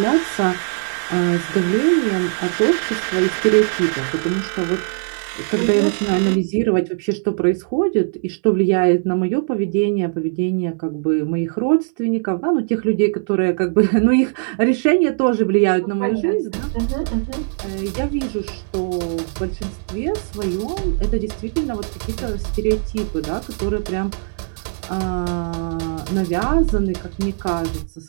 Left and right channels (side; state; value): left; silent; 60 dB below the other